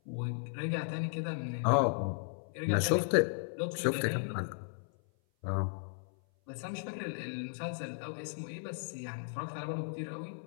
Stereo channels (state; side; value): silent; right; 54 dB below the other